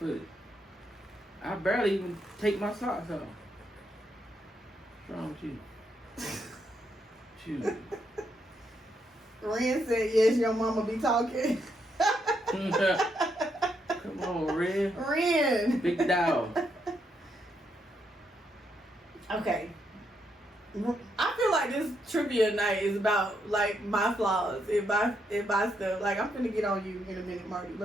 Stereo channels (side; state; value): both; normal; correlation 0.78